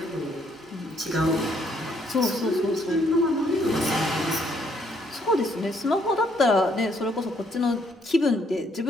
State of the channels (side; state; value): both; normal; correlation 0.69